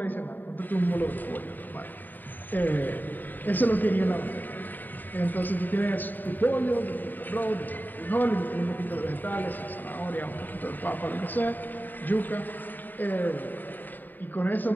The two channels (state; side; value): late; right; 0.089 ms